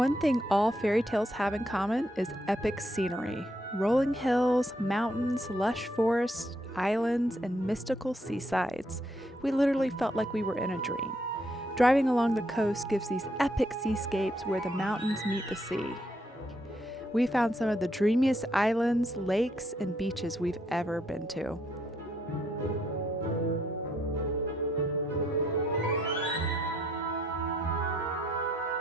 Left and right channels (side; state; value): both; normal; correlation 0.74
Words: thing all fairy tales have in common is epic scenery. Rolling hills, mountains, lush forests, islands, and mystical seasides. We literally felt like we were in a dream. Driving along the coast gives these epic seascapes where the mountains meet the sea. We found some of the dreamiest islands, lakes, and beaches we've ever been to.